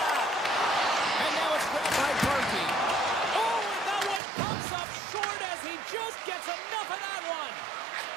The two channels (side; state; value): left; drops out; at 4.2 s